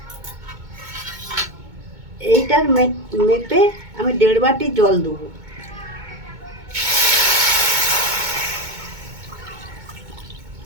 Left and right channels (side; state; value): left; late; 2.2 ms